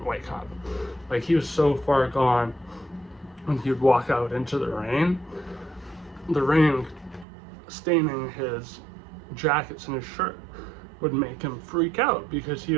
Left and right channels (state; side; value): drops out; left; at 7.2 s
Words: wake up. Like, he was so far gone when he would walk out into the rain staining his jackets and his shirt would make him freak out because he